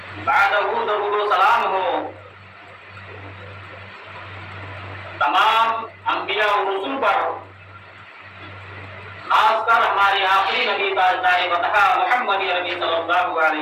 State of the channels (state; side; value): identical; both; correlation 1.00